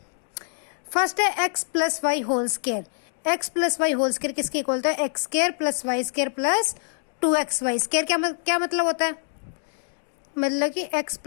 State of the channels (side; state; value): right; silent; digital silence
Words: फर्स्ट है x plus y whole square. X plus y whole square किसके इक्वल होता है? X square plus y square plus 2xy square. क्या मतलब होता है? मतलब कि x